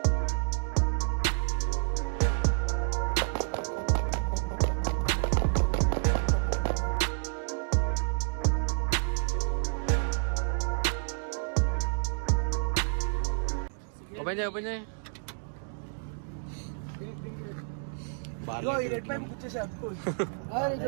ఓపెన్ చేయి ఓపెన్ చేయి. ఇగో ఈ రెడ్ పైప్ గుచ్చేసా అతుకో.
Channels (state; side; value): silent; left; digital silence